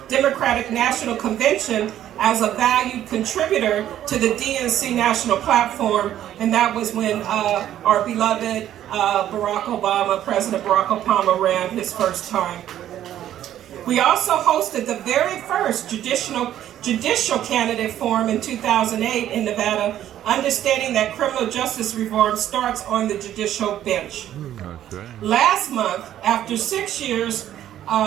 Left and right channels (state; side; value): quieter; left; 11.7 dB